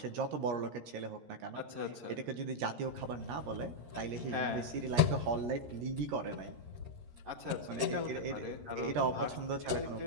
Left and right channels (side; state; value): left; late; 13 ms